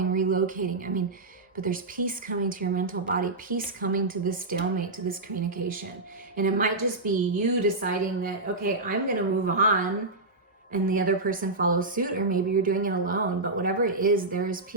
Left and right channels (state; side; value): quieter; left; 3.1 dB